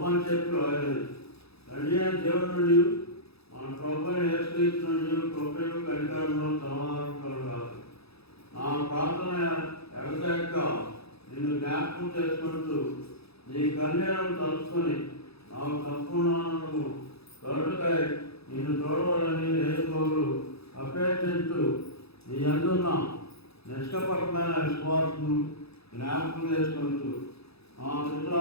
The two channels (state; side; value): late; right; 0.78 ms